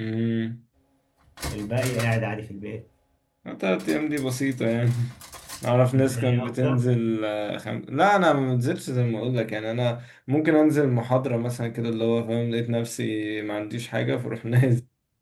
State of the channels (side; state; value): both; identical; correlation 1.00